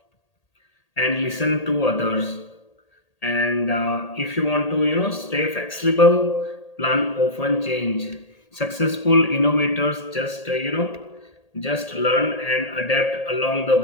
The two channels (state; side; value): late; right; 1.8 ms